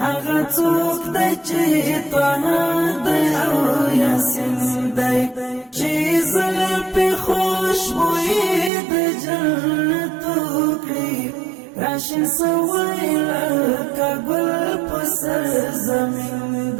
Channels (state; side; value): drops out; left; at 8.7 s